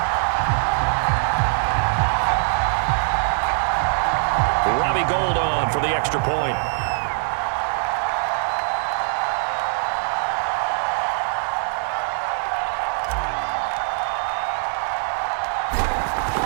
Robbie Gould on for the extra point.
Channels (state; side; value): silent; left; digital silence